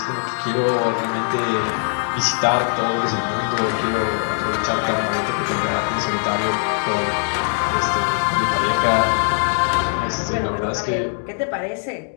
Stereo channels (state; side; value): silent; right; 65 dB below the other